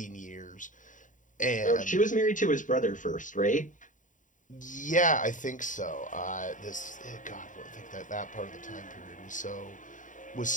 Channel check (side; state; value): right; late; 0.37 ms